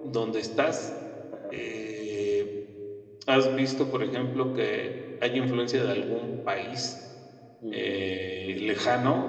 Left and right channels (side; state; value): both; identical; correlation 1.00